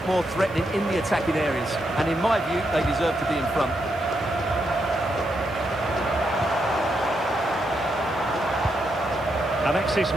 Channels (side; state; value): left; noise; hiss, 26 dB below the sound